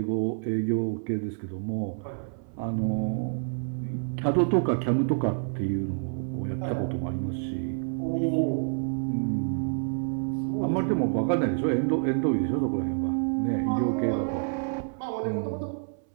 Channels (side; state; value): left; silent; 59 dB below the other